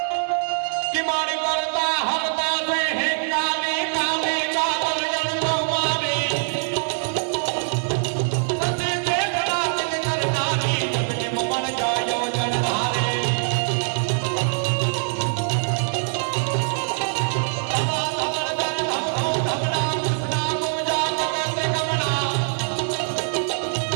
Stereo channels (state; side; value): silent; left; digital silence